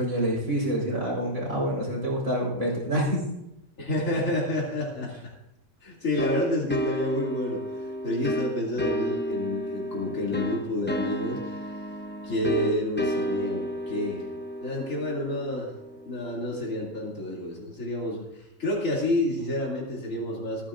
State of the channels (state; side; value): normal; both; correlation 0.11